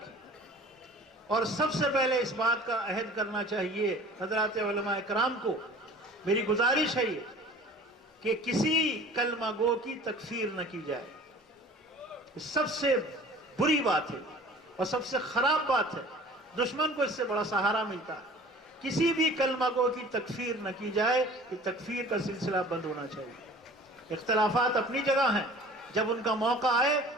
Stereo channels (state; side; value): normal; both; correlation 0.45